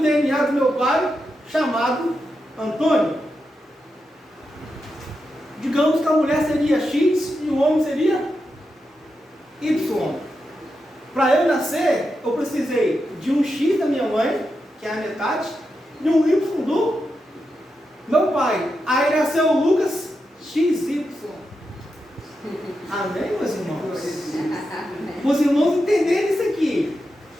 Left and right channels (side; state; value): both; normal; correlation 0.87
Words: do meu pai, chamado Antônio. Digamos que a mulher seria X e o homem seria Y. Para eu nascer, eu precisei de um X da minha mãe, que é a metade, e um Y do meu pai. Aí nasceu o Lucas XY. Amém, meus irmãos? Os irmãos entenderem isso aqui.